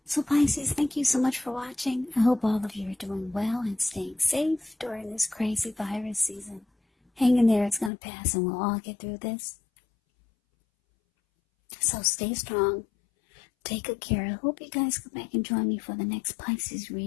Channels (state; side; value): drops out; right; at 7.9 s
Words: So Pisces, thank you so much for watching. I hope all of you are doing well and staying safe during this crazy virus season. Hang in there, it's going to pass and we'll all get through this. So stay strong. Take good care. I hope you guys come back and join me for the next Pisces